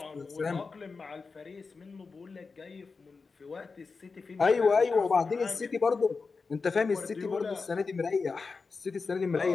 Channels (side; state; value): right; quieter; 4.5 dB